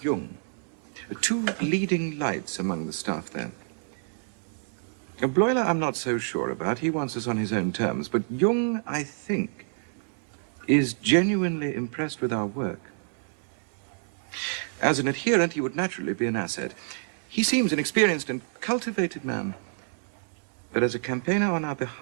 Jung. 2 leading lights among the staff there. Bleuler I'm not so sure about. He wants us on his own terms. But Jung, I think, is genuinely impressed with our work. As an adherent, he would naturally be an asset. He seems an experienced and cultivated man. But as a campaigner on our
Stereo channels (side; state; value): left; silent; 59 dB below the other